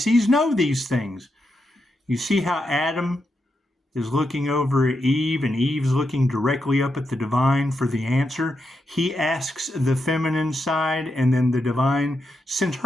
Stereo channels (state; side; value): normal; both; correlation 0.85